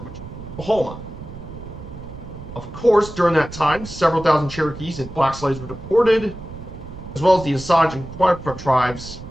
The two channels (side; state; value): right; noise; rumble, 13 dB below the sound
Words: which is Oklahoma. Of course, during that time, several thousand Cherokees and black slaves were deported, as well as the Osage and Quapaw tribes